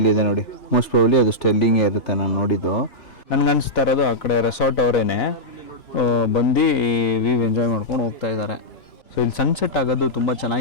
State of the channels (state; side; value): late; right; 2.9 ms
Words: ನೋಡಿ. ಮೋಸ್ಟ್ ಪ್ರಾಬಬ್ಲಿ ಅದು ಸ್ಟೆರ್ಲಿಂಗೇ ಇರುತ್ತೆ ನಾನು ನೋಡಿದ್ದು. ನನಗೆ ಅನಿಸ್ತಾ ಇರೋದು ಆ ಕಡೆ ರೆಸಾರ್ಟ್ ಅವರೇನೆ ಬಂದು ಈ ವ್ಯೂ ಎಂಜಾಯ್ ಮಾಡ್ಕೊಂಡು ಹೋಗ್ತಾ ಇದ್ದಾರೆ. ಸೊ ಇಲ್ಲಿ ಸನ್ಸೆಟ್ ಆಗೋದು ತುಂಬ